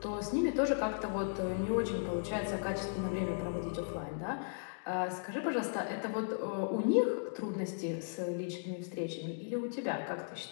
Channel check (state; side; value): silent; right; digital silence